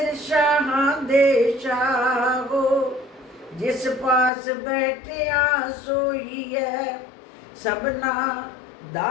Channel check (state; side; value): drops out; right; at 4.3 s